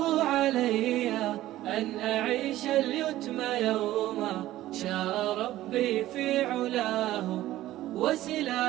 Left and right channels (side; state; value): left; quieter; 14.9 dB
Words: علي أن أعيش اليتم يوما، شاء ربي في علاه